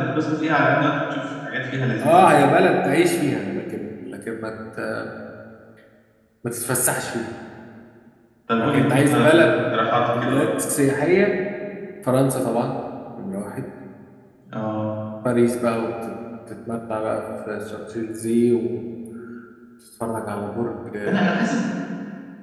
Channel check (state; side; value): identical; both; correlation 1.00